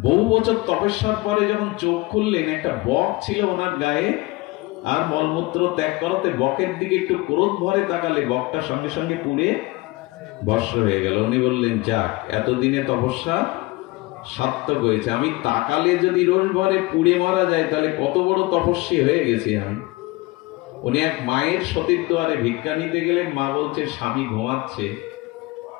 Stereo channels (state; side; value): quieter; right; 22.0 dB